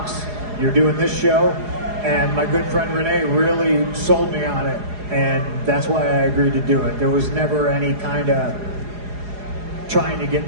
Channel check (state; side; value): late; left; 4.8 ms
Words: you're doing this show, and my good friend Renee really sold me on it. And that's why I agreed to do it. There was never any kind of trying to